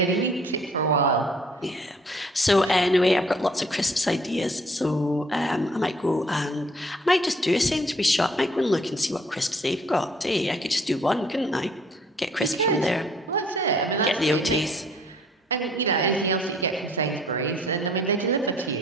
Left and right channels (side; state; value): both; normal; correlation 0.58